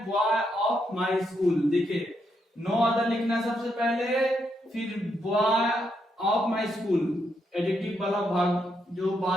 बॉय ऑफ माय स्कूल। देखिए नो अदर लिखना है सबसे पहले, फिर boy of my school, adjective वाला भाग जो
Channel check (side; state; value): both; normal; correlation 0.79